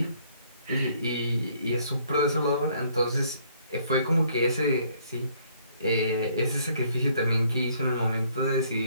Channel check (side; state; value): both; inverted; correlation -0.64